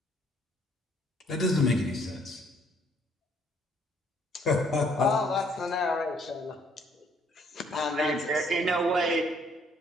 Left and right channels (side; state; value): both; normal; correlation 0.65